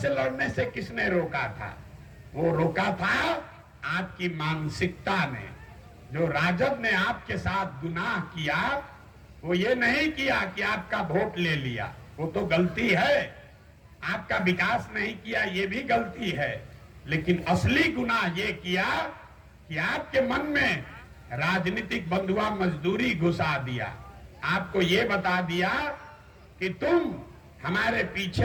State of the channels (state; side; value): identical; both; correlation 1.00